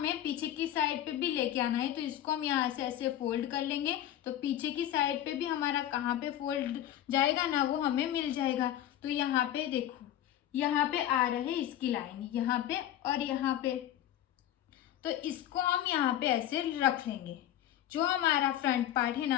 पीछे की साइड पे भी लेके आना है। तो इसको हम यहाँ से ऐसे फोल्ड कर लेंगे तो पीछे की साइड पे भी हमारा कहाँ पे फोल्ड जाएगा ना वो हमें मिल जाएगा। तो यहाँ पे देखो यहाँ पे आ रहे इसकी लाइन यहाँ पे और यहाँ पे, तो इसको हम यहाँ पे ऐसे रख लेंगे। जो हमारा फ्रंट पार्ट है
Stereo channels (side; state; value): right; quieter; 12.1 dB